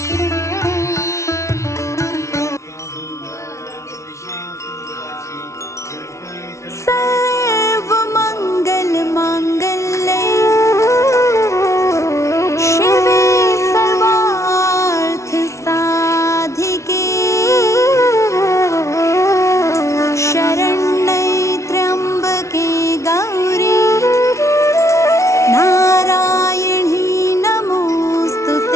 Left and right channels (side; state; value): right; late; 0.14 ms